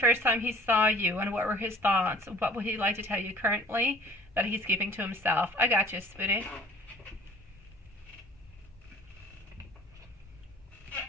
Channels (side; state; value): both; normal; correlation 0.51